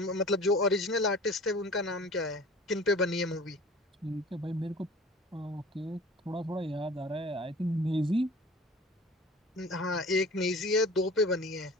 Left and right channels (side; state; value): both; normal; correlation 0.43